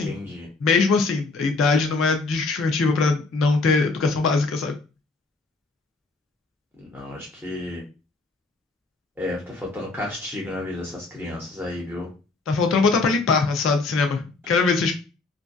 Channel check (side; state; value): right; quieter; 3.8 dB